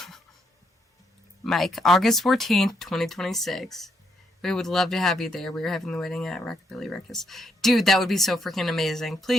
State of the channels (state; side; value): normal; both; correlation 0.76